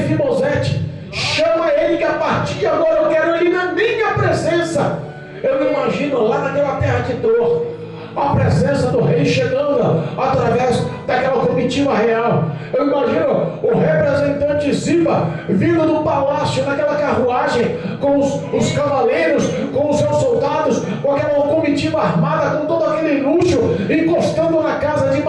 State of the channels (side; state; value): both; identical; correlation 1.00